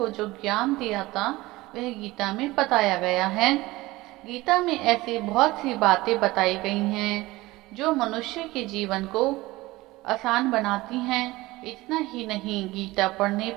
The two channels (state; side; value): quieter; left; 19.5 dB